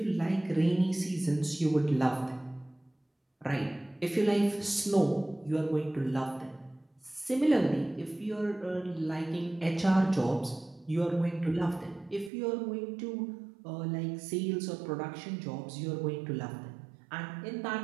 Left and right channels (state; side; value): drops out; left; at 12.3 s